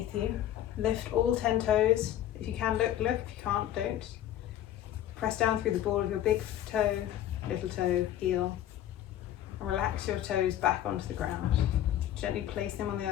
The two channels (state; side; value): quieter; right; 11.9 dB